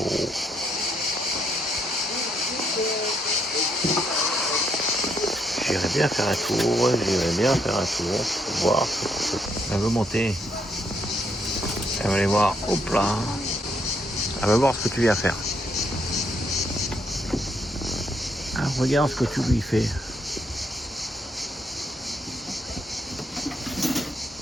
J'irai bien faire un tour, pour voir ce qu'on peut. Elle veut monter. Elle va aller voir, hop là. Elle va voir ce que tu viens faire. Ah, regarde ce que tu lui fais.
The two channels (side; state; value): both; normal; correlation 0.73